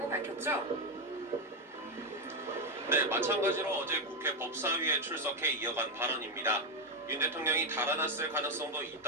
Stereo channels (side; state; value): both; normal; correlation 0.07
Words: 밝혔죠. 네, 마찬가지로 어제 국회 법사위에 출석해 이어간 발언입니다. 윤 대통령이 달아났을 가능성도